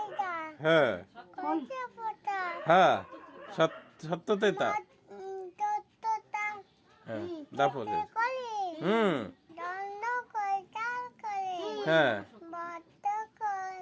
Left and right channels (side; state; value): both; identical; correlation 1.00